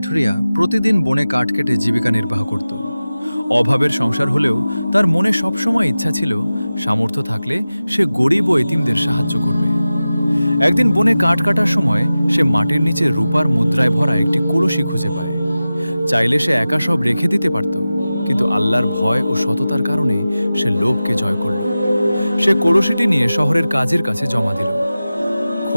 প্রতিদিন বনে কাঠ কেটে জীবিকা নির্বাহ করত। অভাবের সংসার হলেও তার মনে সবসময় ইচ্ছা ছিল সামর্থ্য থাকলে সে গরিব ও এতিমদের সাহায্য করবে। একদিন বনে কাঠ কাটার সময় সে মাটির নিচে রূপার মুদ্রায় ভরা একটি কলসি খুঁজে পায়। চাইলে সে একা সব রেখে দিতে পারত, কিন্তু আল্লাহর ভয় ও সততার কারণে সে লোভকে জয় করল। সে কলসিটি নিয়ে শহরের কাজীর কাছে জমা দিল।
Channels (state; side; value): inverted; both; correlation -0.95